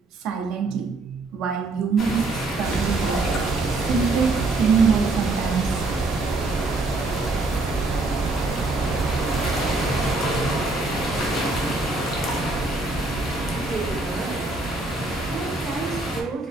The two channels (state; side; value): quieter; left; 3.2 dB